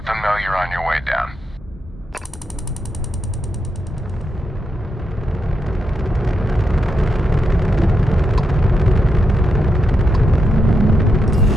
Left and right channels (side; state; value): both; normal; correlation 0.84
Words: them know you're on your way down.